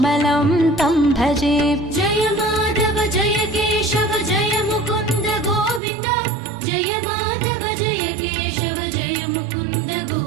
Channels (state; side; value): drops out; left; at 5.8 s